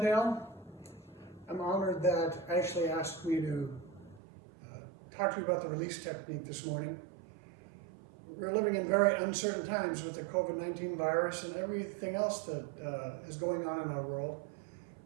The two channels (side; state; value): left; drops out; at 4.2 s